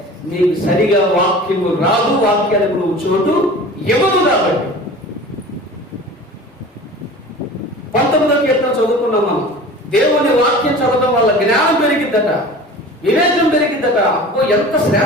నీకు సరిగా వాక్యము రాదు, వాక్యానికి నువ్వు చోటు ఇవ్వదు. కాబట్టి 19వ కీర్తన చదువుకున్నాం మనం. దేవుని వాక్యం చదవడం వల్ల జ్ఞానం పెరిగిద్దట, వివేకం పెరిగిద్దట. అబ్బో ఎంత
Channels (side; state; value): both; normal; correlation 0.39